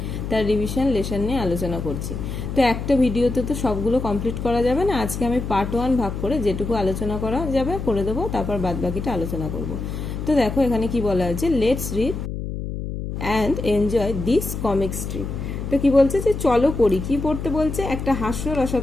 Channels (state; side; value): noise; left; hum, 5 dB below the sound